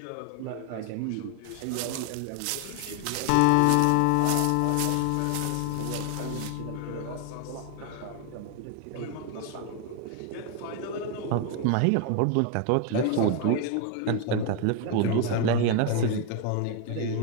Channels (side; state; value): both; different; correlation 0.01